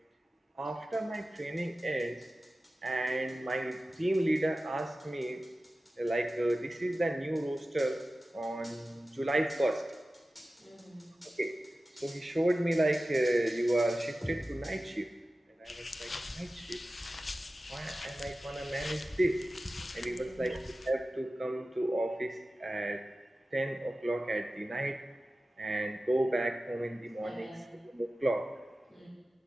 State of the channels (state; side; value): normal; both; correlation 0.95